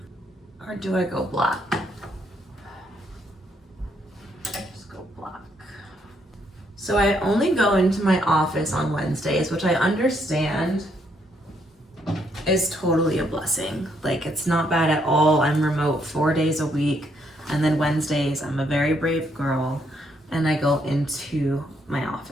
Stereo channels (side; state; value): both; normal; correlation 0.73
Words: Or do I go black? Just go black. So I only go into my office on Wednesdays, which I understand is totally a blessing. Like, it's not bad at all. I'm remote 4 days a week, and then Wednesdays I'm a very brave girl and I go into my